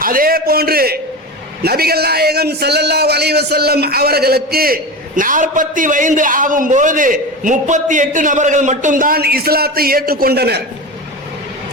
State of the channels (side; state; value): both; normal; correlation 0.25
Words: அதே போன்று நபிகள் நாயகம் ஸல்லல்லாஹு அலைஹி வஸல்லம் அவர்களுக்கு 40 வயது ஆகும்போது 38 நபர்கள் மட்டும்தான் இஸ்லாத்தை ஏற்றுக்கொண்டனர்.